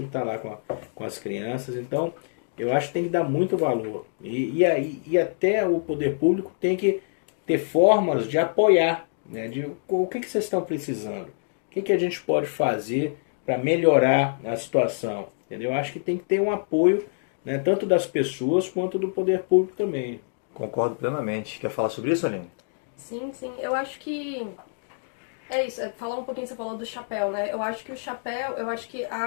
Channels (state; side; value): silent; right; digital silence